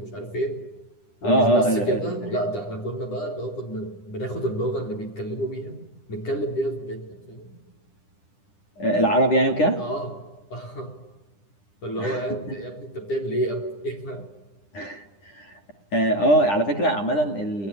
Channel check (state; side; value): late; right; 10 ms